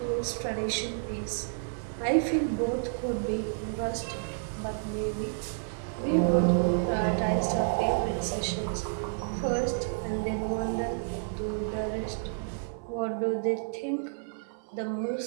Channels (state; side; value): silent; left; 55 dB below the other